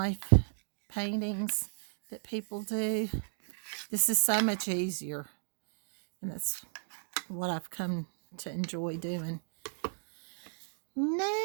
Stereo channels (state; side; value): silent; left; digital silence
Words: paintings that people do. This is so much easier, and that's what I've come to enjoy doing.